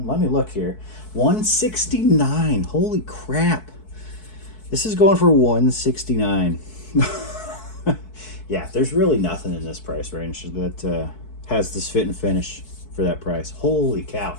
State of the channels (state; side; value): late; right; 4.6 ms